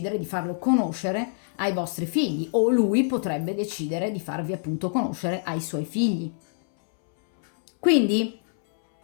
di farlo conoscere ai vostri figli o lui potrebbe decidere di farvi appunto conoscere ai suoi figli. Quindi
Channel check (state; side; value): silent; right; 61 dB below the other